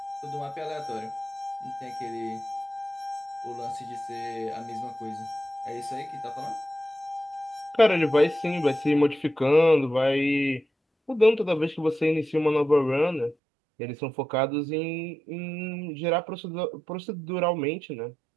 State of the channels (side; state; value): left; drops out; at 13.4 s